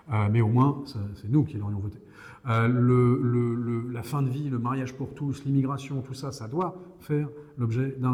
Mais au moins, c'est nous qui l'aurions voté. La fin de vie, le mariage pour tous, l'immigration, tout ça, ça doit faire l'objet d'un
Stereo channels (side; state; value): both; identical; correlation 1.00